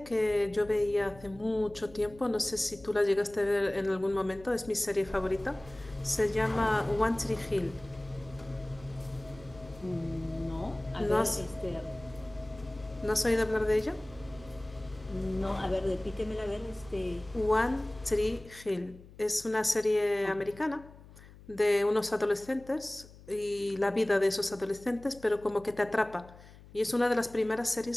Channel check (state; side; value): noise; left; hum, 20 dB below the sound